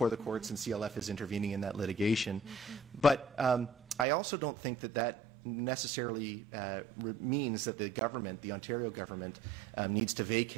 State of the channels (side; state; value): left; drops out; at 4.0 s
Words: the courts, and CLF is intervening in that litigation. But I also don't think that necessarily means that the government, the Ontario government, needs to